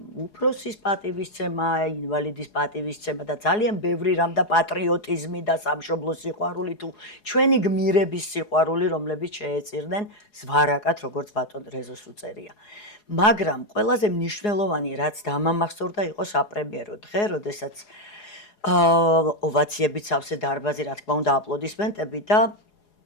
უფროსის პატივისცემა, ინვალიდის პატივისცემა და ძალიან ბევრი რამ და პატრიოტიზმი და სამშობლოს სიყვარული თუ ჩვენი გმირების სიყვარული, რომლებიც შეეწირნენ ზვარაკად, როგორც ბატონ რეზოს უწერია. მაგრამ ყველაზე მნიშვნელოვანი, რაც დამამახსოვრდა, იყო საპრემიერო დღე, როდესაც ოვაციებით სავსე დარბაზი, რა თქმა უნდა, აპლოდისმენტები და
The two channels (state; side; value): late; right; 4.8 ms